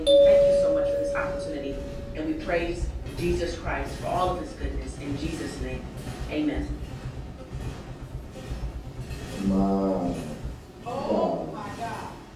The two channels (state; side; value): identical; both; correlation 1.00